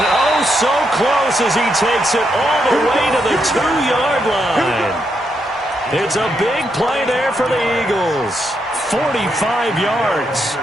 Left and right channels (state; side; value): normal; both; correlation 0.80